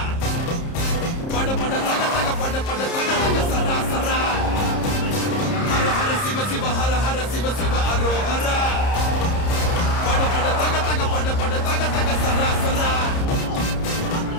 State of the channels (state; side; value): late; right; 30 ms